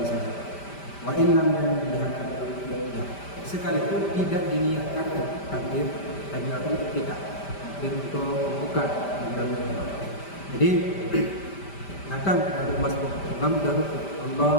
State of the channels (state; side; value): late; right; 5.1 ms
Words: saja. Wa in lam yanbiha, sekalipun tidak diniatkan takbir kita, takbir untuk membuka. Jadi datang dari masjid, imam sudah rukuk,